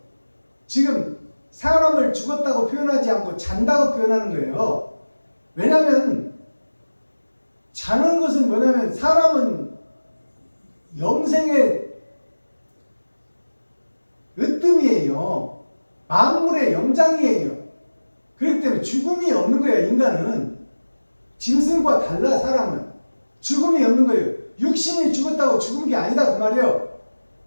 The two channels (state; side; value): inverted; both; correlation -1.00